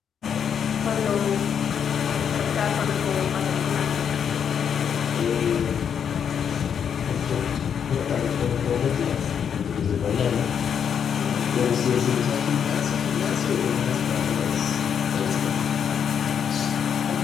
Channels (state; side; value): quieter; right; 7.8 dB